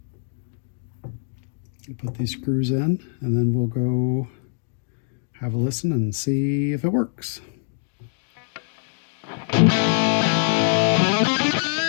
put these screws in, and then we'll go have a listen and see if it works.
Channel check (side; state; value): right; silent; digital silence